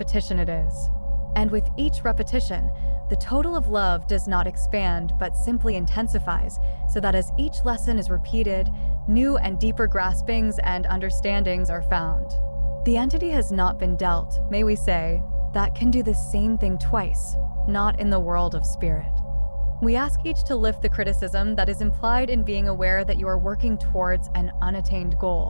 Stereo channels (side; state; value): both; inverted; correlation -1.00